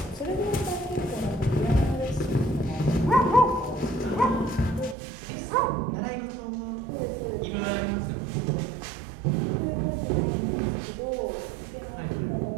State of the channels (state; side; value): drops out; left; at 5.0 s